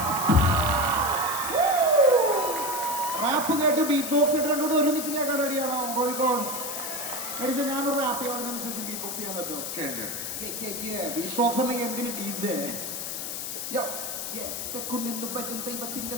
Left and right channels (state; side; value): noise; left; hiss, 5 dB below the sound